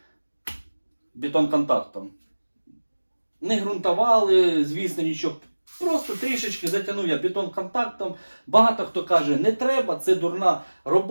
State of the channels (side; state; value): both; inverted; correlation -1.00